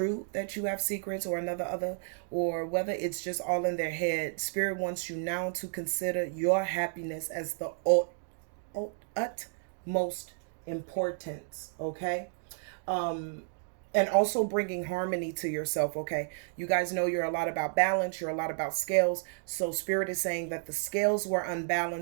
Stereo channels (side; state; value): left; silent; digital silence